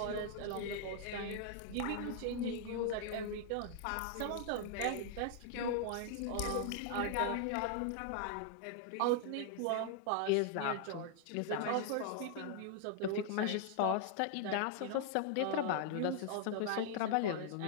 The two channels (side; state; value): both; different; correlation -0.01